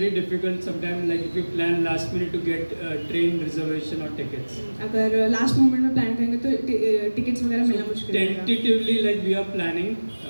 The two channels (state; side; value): inverted; both; correlation -1.00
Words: difficult sometimes like if you plan last minute to get train reservation or tickets. अगर लास्ट मोमेंट में प्लान करेंगे तो टिकट्स वगैरह मिलना मुश्किल है Tentatively like we are planning